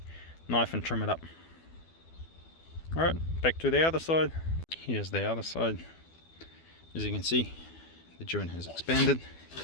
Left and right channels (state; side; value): late; right; 12 ms